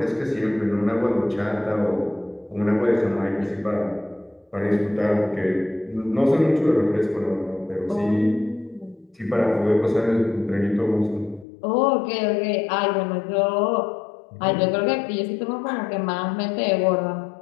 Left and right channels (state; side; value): drops out; right; at 11.5 s